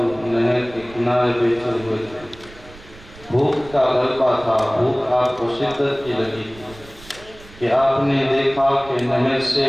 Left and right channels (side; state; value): right; noise; rumble, 21 dB below the sound